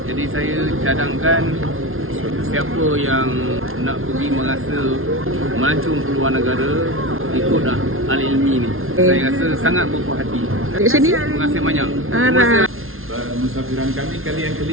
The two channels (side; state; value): left; late; 0.61 ms